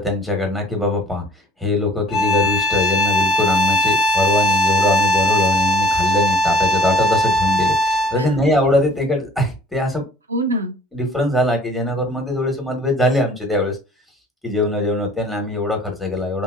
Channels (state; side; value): normal; both; correlation 0.53